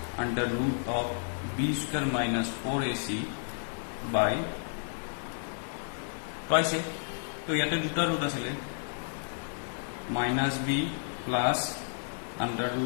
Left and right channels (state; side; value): silent; right; 57 dB below the other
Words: under root of b square minus 4ac by twice তো ইয়াতে দুটা রুট আছিল minus b plus under